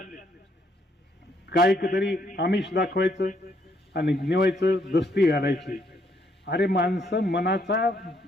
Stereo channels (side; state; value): both; normal; correlation 0.71